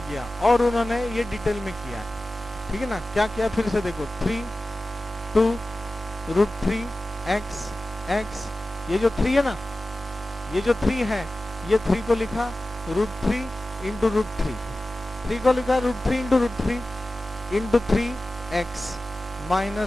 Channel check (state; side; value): normal; both; correlation 0.95